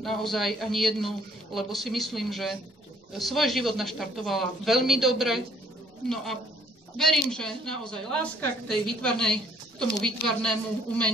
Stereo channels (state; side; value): normal; both; correlation 0.62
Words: naozaj ani jednu, lebo si myslím, že svoj život naštartovala veľmi dobre, no a verím, že naozaj láska k tomu výtvarnému